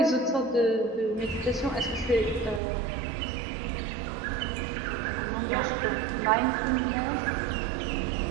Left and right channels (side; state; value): left; drops out; at 2.6 s